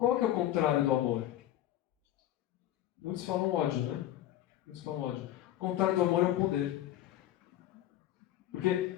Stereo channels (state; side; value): quieter; right; 13.1 dB